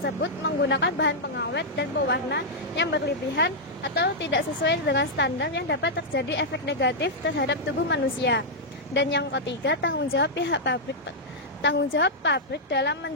menggunakan bahan pengawet dan pewarna yang berlebihan atau tidak sesuai dengan standar yang dapat terjadi efek negatif terhadap tubuh manusia. Dan yang ketiga, tanggung jawab pabrik dalam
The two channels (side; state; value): both; normal; correlation -0.06